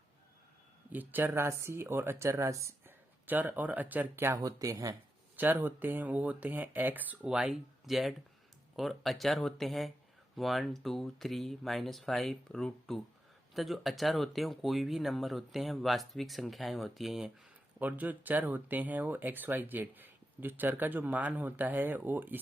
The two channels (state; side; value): normal; both; correlation 0.88